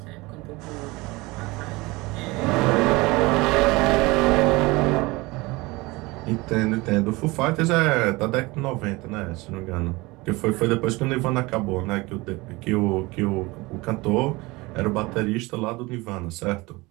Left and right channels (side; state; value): left; quieter; 22.8 dB